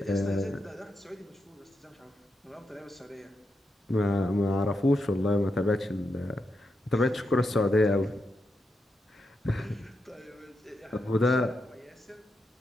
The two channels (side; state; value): both; normal; correlation 0.85